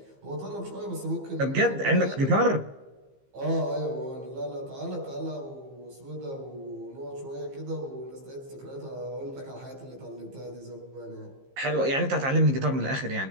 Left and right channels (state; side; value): late; left; 15 ms